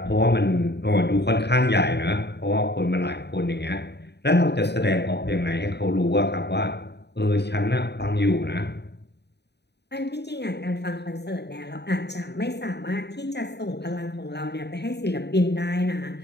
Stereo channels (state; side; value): late; right; 0.49 ms